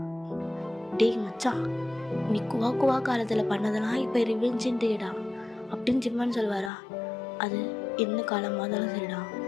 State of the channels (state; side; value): drops out; right; at 6.7 s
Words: டேய் மச்சான், நீ குவா காலத்தில் பண்ணதெல்லாம் இப்போ ரிவெஞ்சுடா அப்படின்னு ஜிம்மான்னு சொல்லுவாரா. அது என்ன காலமாக இருந்தாலும் சரிடா,